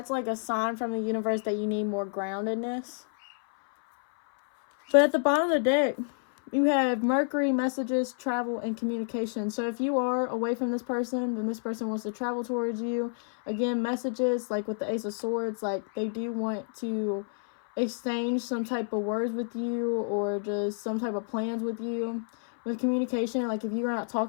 like a sign from the universe that you need more groundedness. But at the bottom of the deck, you have Mercury, messages, travel, and communication. So if you are away from this person, then this person wants to travel towards you. Again, messages, like with the Ace of Swords, like they do want to exchange some type of words with you, or just some type of plans with you. With communication, like if you're not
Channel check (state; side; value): silent; right; 58 dB below the other